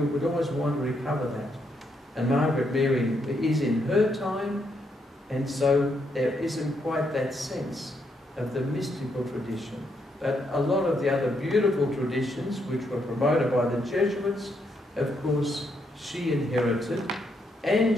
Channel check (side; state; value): both; normal; correlation 0.77